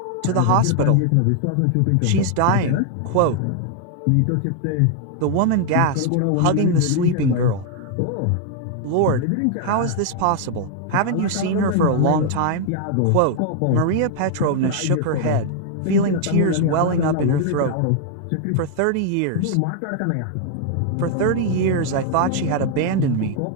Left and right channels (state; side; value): different; both; correlation 0.00